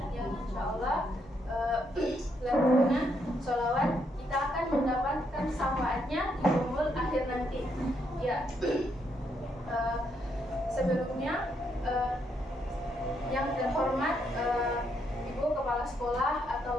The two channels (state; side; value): normal; both; correlation 0.76